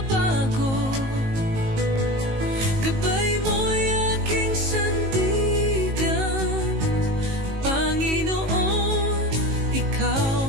Gabay mo'y aking sandigan, Panginoon,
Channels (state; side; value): late; left; 19 ms